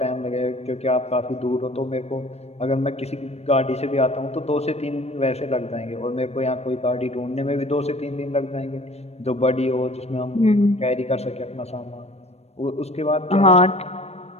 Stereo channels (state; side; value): late; right; 0.31 ms